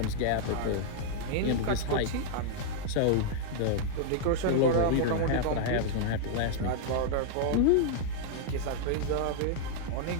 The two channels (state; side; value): different; both; correlation -0.01